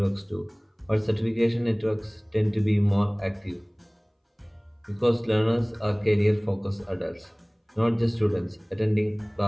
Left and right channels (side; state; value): both; identical; correlation 1.00